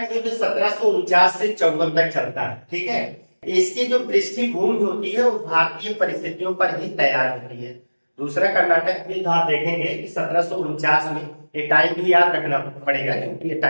युद्ध 1749 से 54 तक चलता है। ठीक है, इसकी जो पृष्ठभूमि होती है वो भारतीय परिस्थितियों पर ही तैयार होती है। दूसरा कर्नाटक युद्ध आप देखेंगे कि 1749 में, ये टाइम भी याद रखना पड़ेगा क्योंकि ये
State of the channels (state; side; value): inverted; both; correlation -1.00